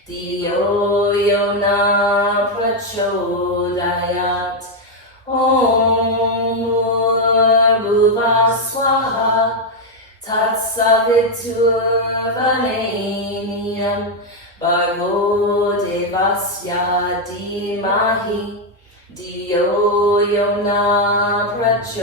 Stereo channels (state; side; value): normal; both; correlation 0.02